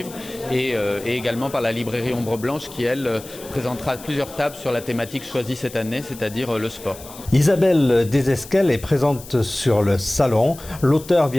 et également par la librairie Ombre Blanche qui, elle, présentera plusieurs tables sur la thématique choisie cette année, c'est-à-dire le sport. Isabelle Desesquelles est présente sur le salon. L'auteur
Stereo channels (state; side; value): noise; left; hiss, 17 dB below the sound